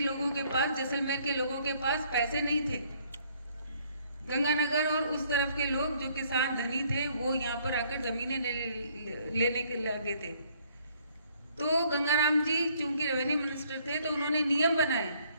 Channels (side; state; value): both; inverted; correlation -0.64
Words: के पास, जैसलमेर के लोगों के पास पैसे नहीं थे। गंगानगर और उस तरफ के लोग जो किसान धनी थे वो यहाँ पर आकर जमीनें लेने के लगे थे। तो गंगाराम जी चूंकि रेवेन्यू मिनिस्टर थे तो उन्होंने नियम बनाए।